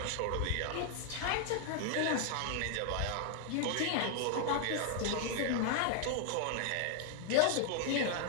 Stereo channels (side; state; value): both; different; correlation 0.00